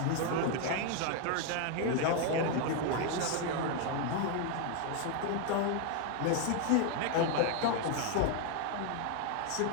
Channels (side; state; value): both; different; correlation 0.00